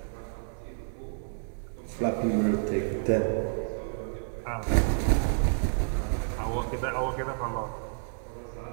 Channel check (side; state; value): left; silent; digital silence